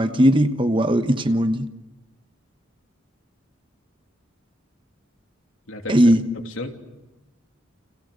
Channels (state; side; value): normal; both; correlation 0.83